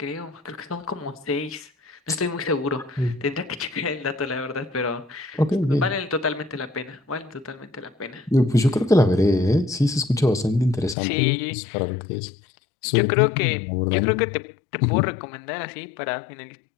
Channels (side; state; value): right; drops out; at 11.0 s